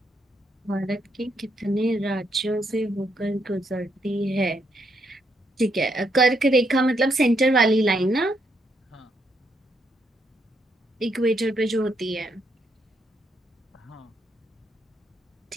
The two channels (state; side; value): normal; both; correlation 0.76